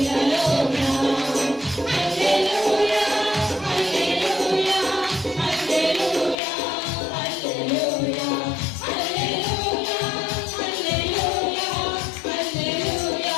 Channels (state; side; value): drops out; right; at 6.4 s